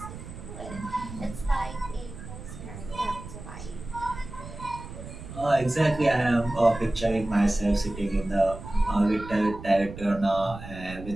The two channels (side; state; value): right; noise; rumble, 12 dB below the sound